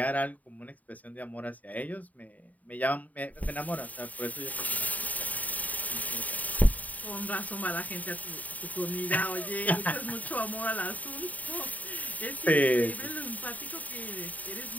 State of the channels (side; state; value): right; late; 0.074 ms